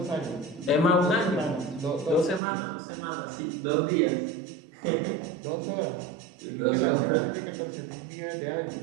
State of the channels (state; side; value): drops out; left; at 2.4 s